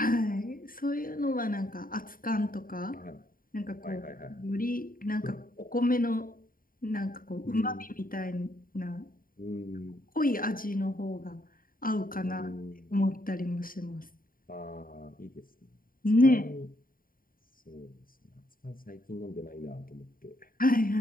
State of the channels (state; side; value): late; right; 0.41 ms